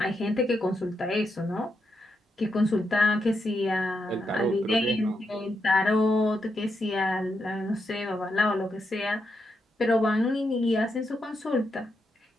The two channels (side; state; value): both; normal; correlation 0.83